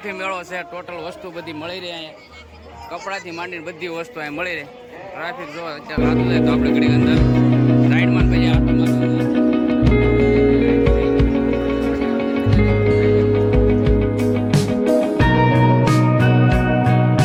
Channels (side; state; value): both; identical; correlation 1.00